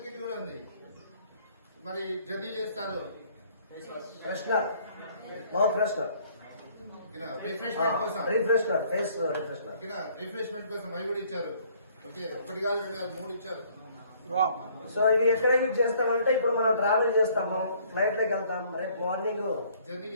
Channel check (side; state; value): both; inverted; correlation -0.60